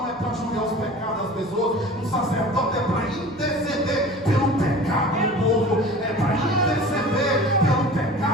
é para julgar os pecados das pessoas, um sacerdote é para interceder pelo pecado do povo, é para interceder pelo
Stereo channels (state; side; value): noise; left; hum, 29 dB below the sound